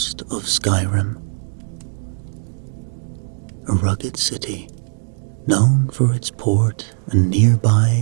of Skyrim, a rugged city known for its port and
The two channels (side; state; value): left; silent; digital silence